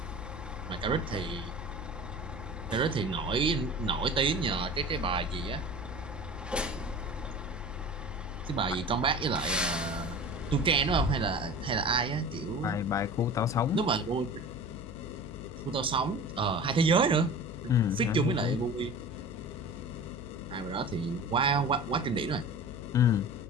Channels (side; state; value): left; noise; hum, 12 dB below the sound